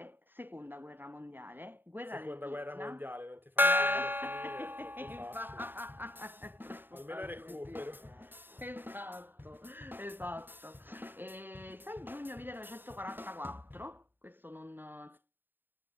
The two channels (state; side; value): late; left; 0.095 ms